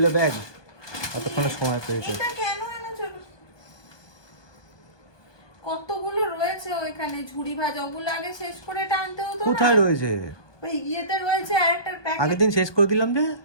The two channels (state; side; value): late; right; 1.2 ms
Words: ব্যাগ, কতক্ষণে সময় পেয়েছে। এটা কেন এনেছো? কতগুলো রয়েছে ওইখানে ঝুড়ি ভাজা, ওগুলো আগে শেষ করে টানতে হতো না? কোথায় রয়েছে? ওই ইয়েতে রয়েছে আরেকটা প্যাকেট, আগের দিন শেষ করে দিলাম যে।